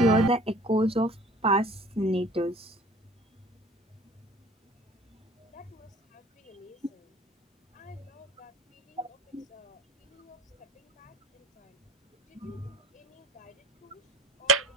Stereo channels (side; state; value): both; normal; correlation 0.48